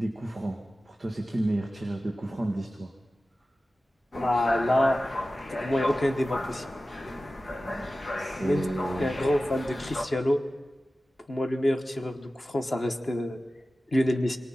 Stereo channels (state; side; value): normal; both; correlation 0.95